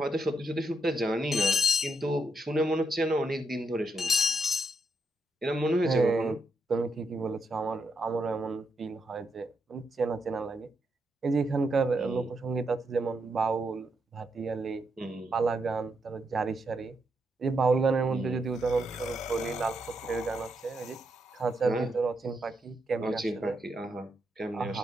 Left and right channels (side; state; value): both; normal; correlation 0.80